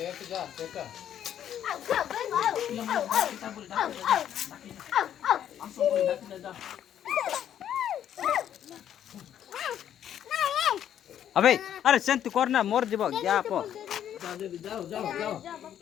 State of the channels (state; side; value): quieter; right; 10.2 dB